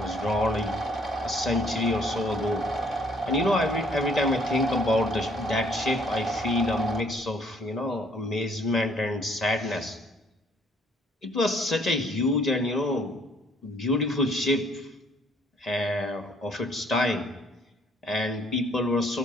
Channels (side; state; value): both; normal; correlation 0.63